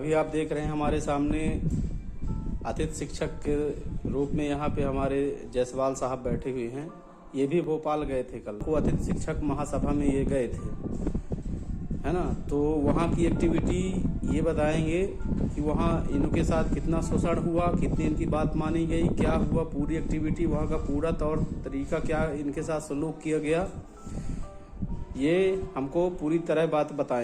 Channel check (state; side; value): identical; both; correlation 1.00